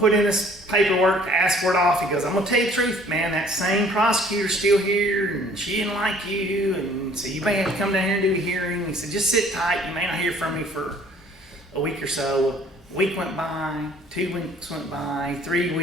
in this paperwork to ask for it off. He goes, I'm gonna tell you the truth, man. That same prosecutor's still here, and she didn't like you, and so you may have to come down here and do a hearing. He said, just sit tight. You may not hear from me for a week or so. A week went by, 2 weeks went by, 3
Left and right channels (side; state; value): both; normal; correlation 0.56